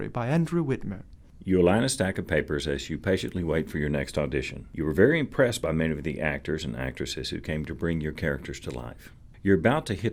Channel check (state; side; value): identical; both; correlation 1.00